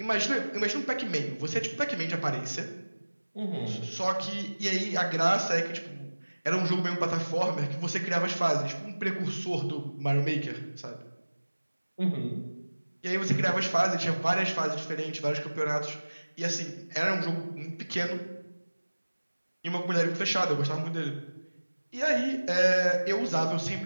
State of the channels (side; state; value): both; inverted; correlation -1.00